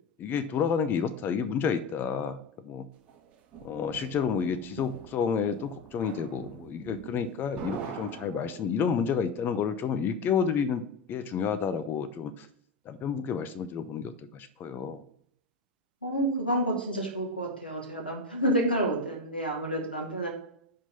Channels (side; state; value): right; quieter; 3.7 dB